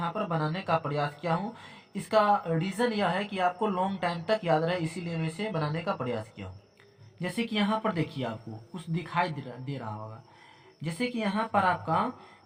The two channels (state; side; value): identical; both; correlation 1.00